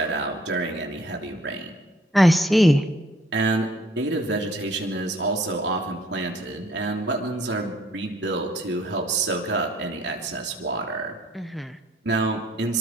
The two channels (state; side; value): normal; both; correlation 0.59